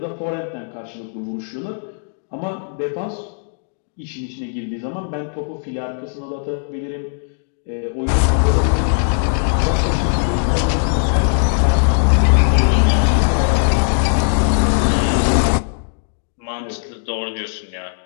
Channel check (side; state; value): right; silent; digital silence